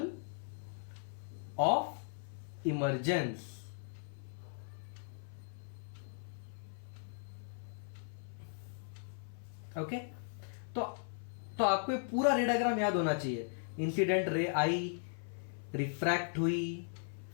ऑफ इमर्जेंस। ओके, तो आपको ये पूरा रे डायग्राम याद होना चाहिए। इंसिडेंट रे आई, रिफ्रैक्ट हुई,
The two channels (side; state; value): right; silent; 53 dB below the other